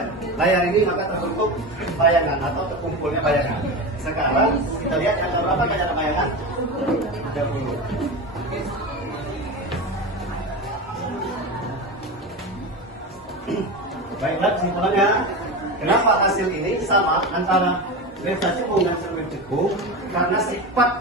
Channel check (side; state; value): both; normal; correlation 0.23